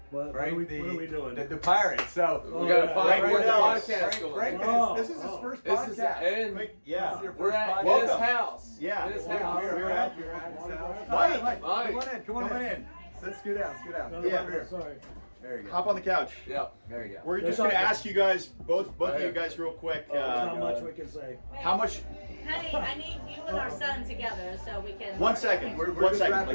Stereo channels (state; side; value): inverted; both; correlation -1.00